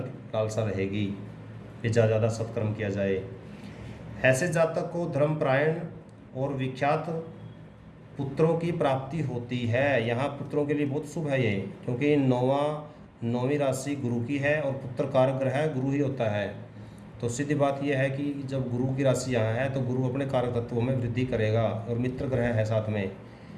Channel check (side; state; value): both; identical; correlation 1.00